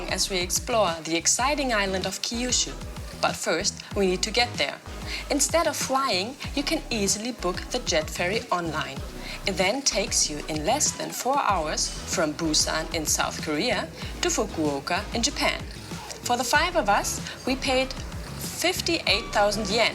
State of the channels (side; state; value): both; identical; correlation 1.00